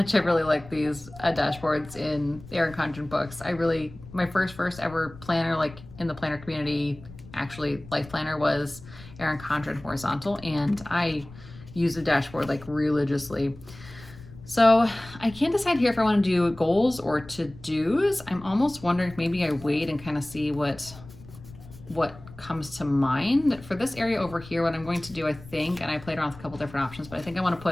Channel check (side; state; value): left; noise; rumble, 18 dB below the sound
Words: I really like these dashboards in the Erin Condren books. My first ever planner, like in the planner community, actually life planner, was Erin Condren horizontal, and I use the dashboard like religiously. So I can't decide here if I want to do goals or to-dos. I'm almost wondering if maybe I wait and kind of see what comes to mind. For this area over here, what I'm going to do, I think, and I played around with a couple different options, but I think I want to